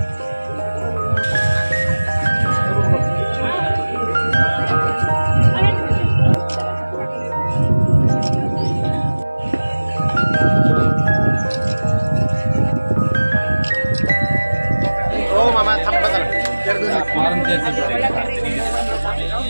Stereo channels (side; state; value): both; inverted; correlation -1.00